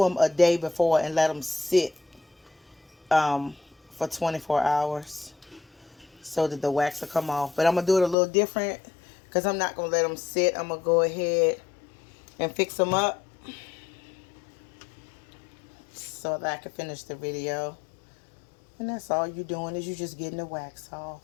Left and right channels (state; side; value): drops out; right; at 8.2 s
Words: them a day before and let them sit for 24 hours so that the wax will come off. But I'm going to do it a little different because I'm not going to let them sit. I'm going to go ahead and fix them up so that I can finish the video. And that's all you're doing is you're just getting the wax off.